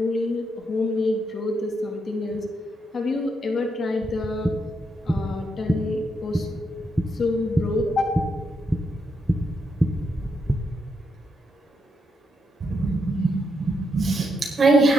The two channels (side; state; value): both; normal; correlation 0.80